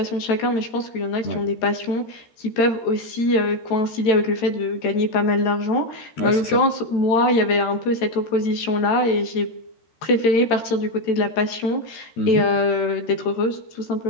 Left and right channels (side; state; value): right; late; 13 ms